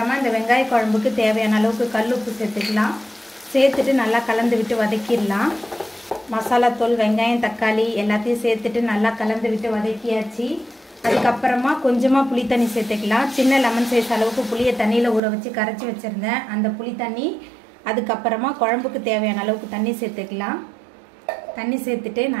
இந்த வெங்காய குழம்புக்கு தேவையான அளவுக்கு கல் உப்பு சேர்த்துக்கலாம். சேர்த்துட்டு நல்லா கலந்து விட்டு வதக்கிடலாம். மசாலா தூள் வெங்காயம் தக்காளி எல்லாத்தையும் சேர்த்துட்டு நல்லா கலந்து விட்டு வதக்கியாச்சு. அதுக்கப்புறமா கொஞ்சமாக புளி தண்ணி சேர்த்துக்கலாம். சின்ன லெமன் சைஸ் அளவுக்கு புளியை தண்ணியில் ஊற வச்சு கரைச்சி வச்சுருந்தேன், அந்த புளி தண்ணி. அதுக்கப்புறமா குழம்புக்கு தேவையான அளவுக்கு தண்ணி சேர்த்துக்கலாம். தண்ணி சேர்த்துட்டு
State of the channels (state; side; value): drops out; left; at 15.2 s